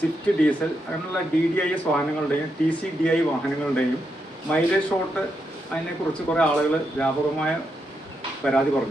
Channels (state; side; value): normal; both; correlation 0.83